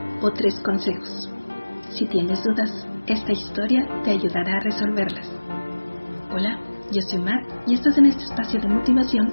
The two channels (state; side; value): inverted; both; correlation -1.00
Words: o 3 consejos? Si tienes dudas, esta historia te ayudará a resolverlas. Hola, yo soy Mar y estás en este espacio de